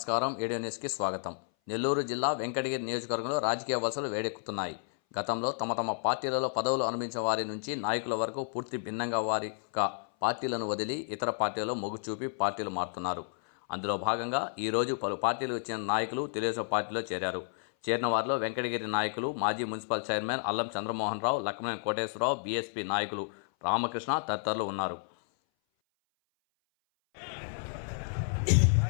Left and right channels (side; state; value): right; silent; 57 dB below the other